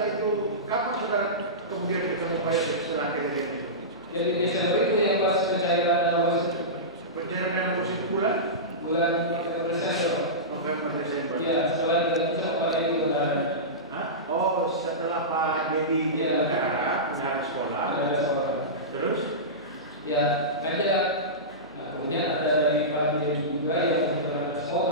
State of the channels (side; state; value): both; normal; correlation -0.18